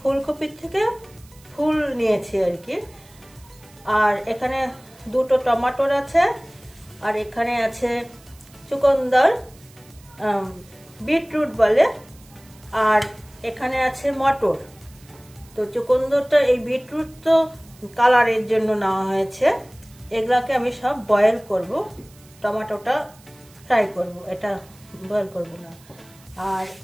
থেকে ফুল নিয়েছি আর কি। আর এখানে 2টো টমেটোর আছে, আর এখানে আছে চুকন্দর, বিটরুট বলে, আর এখানে আছে মটর। তো চুকন্দরটা, এই বিটরুট তো কালারের জন্য নেওয়া হয়েছে। এগুলাকে আমি সব বয়েল করব, টমেটোটা ফ্রাই করব, এটা বয়েল করব না। আর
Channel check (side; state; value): right; noise; hiss, 26 dB below the sound